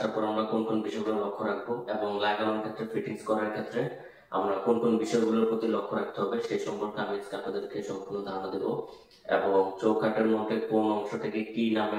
পর আমরা কোন কোন বিষয়গুলো লক্ষ্য রাখবো এবং লাগানোর ক্ষেত্রে, ফিটিংস করার ক্ষেত্রে আমরা কোন কোন বিষয়গুলোর প্রতি লক্ষ্য রাখতে হবে সেই সম্পর্কে আমি আজকে আপনাদেরকে সম্পূর্ণ ধারণা দেব। এবং চৌকাঠের মধ্যে কোন অংশটাকে কি নামে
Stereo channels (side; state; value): both; identical; correlation 1.00